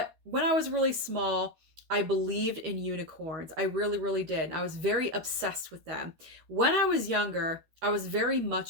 when I was really small, I believed in unicorns. I really, really did. I was very obsessed with them. When I was younger, I was very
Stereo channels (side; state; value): left; late; 13 ms